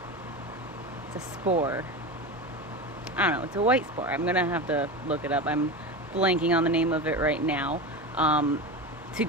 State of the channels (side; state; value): both; normal; correlation 0.24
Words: a spore. I don't know. It's a white spore. I'm gonna have to look it up. I'm blanking on the name of it right now. To